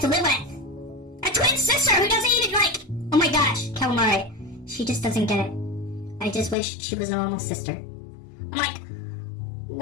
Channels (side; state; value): right; drops out; at 6.6 s